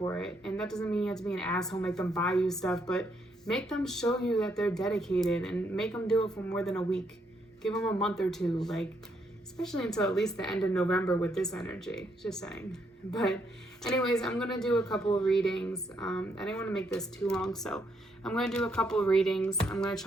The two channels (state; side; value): normal; both; correlation 0.74